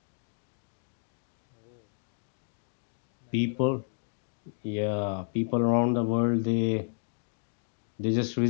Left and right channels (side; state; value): right; silent; digital silence